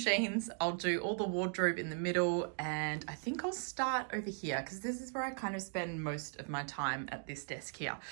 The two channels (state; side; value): silent; left; 52 dB below the other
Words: I'll do all the wardrobe in the middle, and I think I'll start over here because this is where I kind of spend most of my time at this desk here.